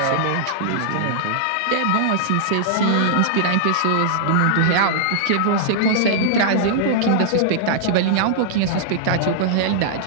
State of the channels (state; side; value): different; both; correlation -0.02